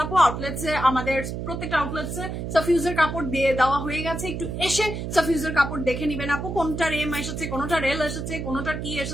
আপু, আউটলেটসে আমাদের প্রত্যেকটা আউটলেটসে সাফিউজের কাপড় দিয়ে দেওয়া হয়ে গেছে, একটু এসে সাফিউজের কাপড় দেখে নিবেন আপু, কোনটার এম এসেছে, কোনটার এল এসেছে, কোনটার কি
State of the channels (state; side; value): noise; right; hum, 5 dB below the sound